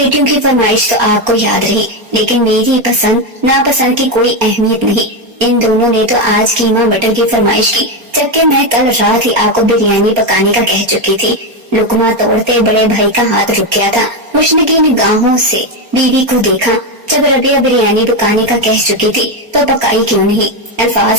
کی فرمائش تو آپ کو یاد رہی، لیکن میری پسند ناپسند کی کوئی اہمیت نہیں۔ ان دونوں نے تو آج قیمہ مٹر کی فرمائش کی، جبکہ میں کل رات ہی آپ کو بریانی پکانے کا کہہ چکی تھی۔ لقمہ توڑتے بڑے بھائی کا ہاتھ رک گیا تھا۔ مشنقی نگاہوں سے بیوی کو دیکھا۔ جب ربیہ بریانی پکانے کا کہہ چکی تھی تو پکائی کیوں نہیں؟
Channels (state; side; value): late; left; 4.3 ms